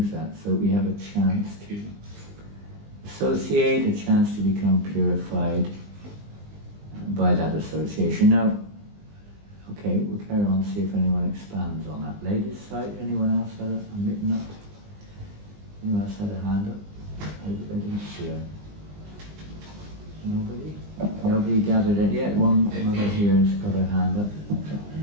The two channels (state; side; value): late; left; 20 ms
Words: that, so we have a chance to associate, a chance to become purified by that association. Now, okay, we'll carry on, see if anyone expands on that. Ladies' side, anyone else had a mitten up? Anyone else had a hand up? I didn't see it. Nobody? Nobody gathered it yet. One mother here has got her hand up.